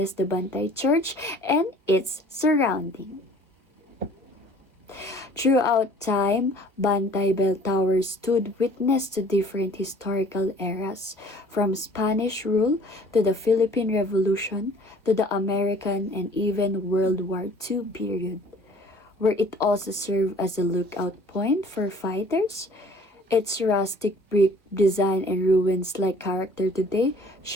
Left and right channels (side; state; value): both; normal; correlation 0.52